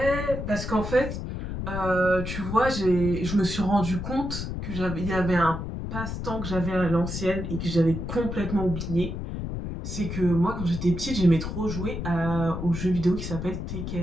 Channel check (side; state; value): left; noise; rumble, 5 dB below the sound